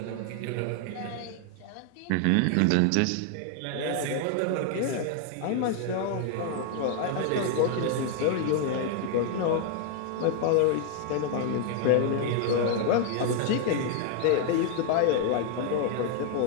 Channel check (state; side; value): different; both; correlation 0.00